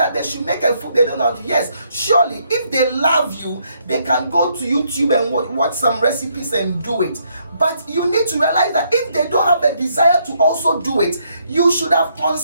they should make a food they don't know how to. Yes, surely, if they love you, they can go to YouTube and watch some recipes and do it. But you need to realize that if they don't have a desire to also do it, you should have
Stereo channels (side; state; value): both; inverted; correlation -0.73